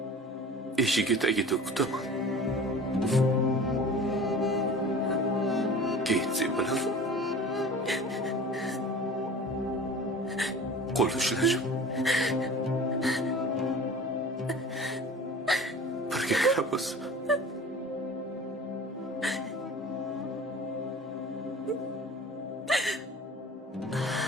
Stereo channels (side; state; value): both; normal; correlation 0.40